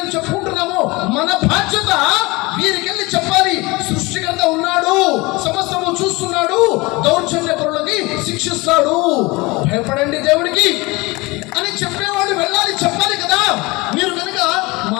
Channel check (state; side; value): quieter; right; 23.8 dB